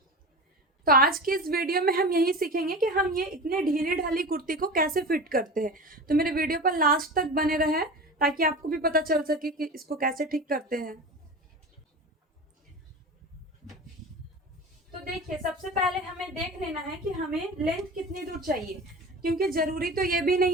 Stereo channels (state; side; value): normal; both; correlation 0.31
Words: तो आज की इस वीडियो में हम यही सीखेंगे कि हम ये इतने ढीली ढाली कुर्ती को कैसे फिट करते हैं। तो मेरे वीडियो पर लास्ट तक बने रहे, ताकि आपको भी पता चल सके कि इसको कैसे ठीक करते हैं। तो देखिए, सबसे पहले हमें देख लेना है कि हमें लेंथ कितनी दूर चाहिए, क्योंकि जरूरी तो ये भी